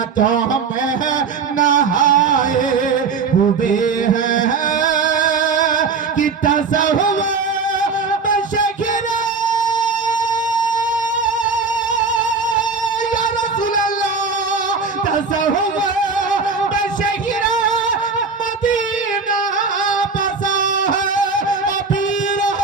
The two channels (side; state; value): left; quieter; 4.8 dB